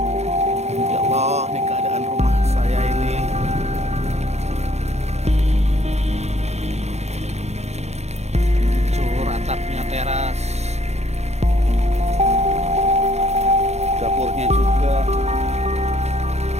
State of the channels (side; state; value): left; late; 0.32 ms